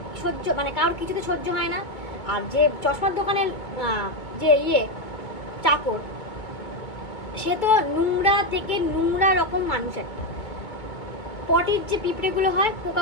কারোর কিছুতে সহ্য হয় না। আর যে চশমার দোকানের যে চাকর, সে তো নোংরা থেকে নোংরা রকম মানুষ একটা, পটির যে পিঁপড়েগুলো হয়,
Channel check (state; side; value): late; right; 2.2 ms